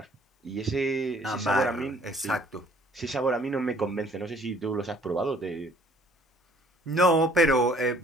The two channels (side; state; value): both; normal; correlation 0.58